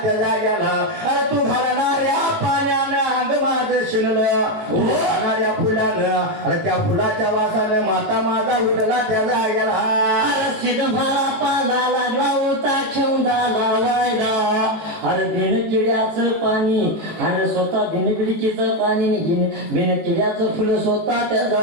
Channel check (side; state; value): left; late; 18 ms